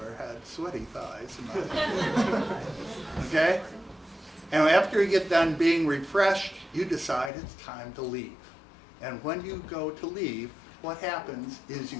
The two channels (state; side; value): drops out; right; at 7.3 s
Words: had sweaty thighs in my life. Okay? And after you get done being refreshed, you decide it's time to leave. And when you go to leave, what happens is you